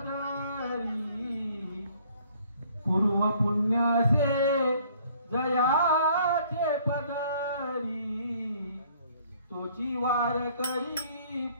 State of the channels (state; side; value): inverted; both; correlation -0.59